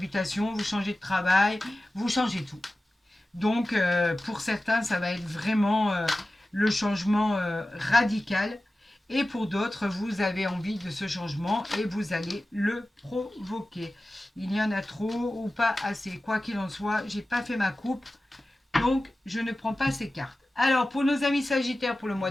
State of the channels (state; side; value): normal; both; correlation 0.95